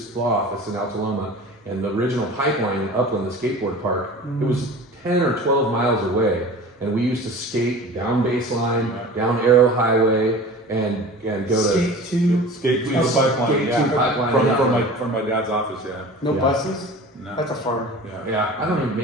law office in Alta Loma, and the original pipeline in Upland, the skateboard park, it was 10 or 12 miles away. And we used to skate down Baseline, down Arrow Highway, and go skate to. Skate to the Oh, pipeline, skate to yeah. pipeline, From, yeah. from my dad's office, yeah. no Yeah. buses? No. That's a farm. Yeah. Yeah, I don't even,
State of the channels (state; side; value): normal; both; correlation 0.39